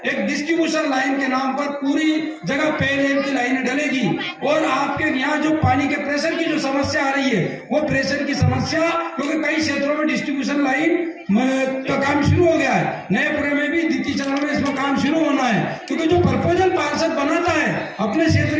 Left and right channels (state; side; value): identical; both; correlation 1.00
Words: एक डिस्ट्रीब्यूशन लाइन के नाम पर पूरी जगह पेयजल की लाइनें डलेगी और आपके यहाँ जो पानी के प्रेशर की जो समस्या आ रही है, वो प्रेशर की समस्या, क्योंकि कई क्षेत्रों में डिस्ट्रीब्यूशन लाइन का काम शुरू हो गया है, नएपुरे में भी द्वितीय चरण में इसमें काम शुरू होना है। क्योंकि जो प्रपोजल पार्षद बनाता है अपने